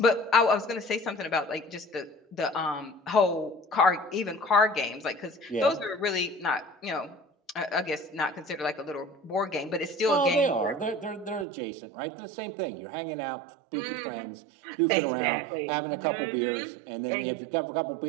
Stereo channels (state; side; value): drops out; left; at 11.5 s